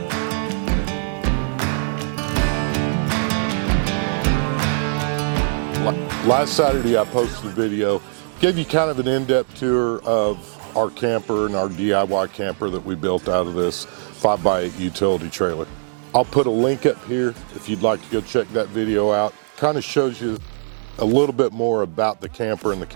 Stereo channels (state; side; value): silent; left; digital silence